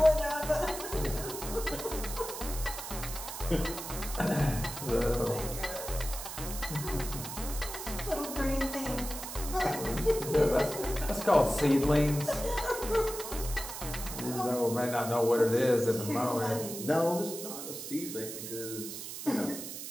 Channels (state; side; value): noise; right; hiss, 8 dB below the sound